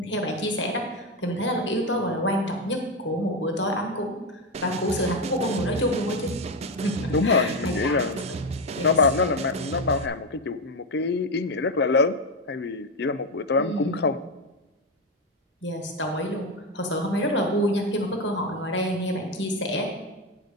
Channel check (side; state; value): both; normal; correlation 0.11